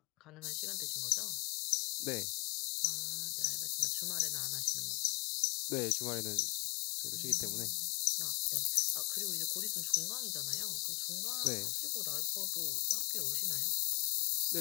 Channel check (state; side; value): quieter; right; 32.1 dB